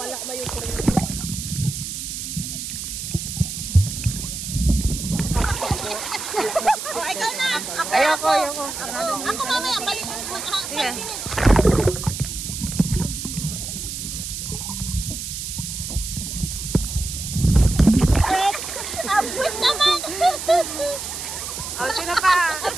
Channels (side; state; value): right; noise; hiss, 6 dB below the sound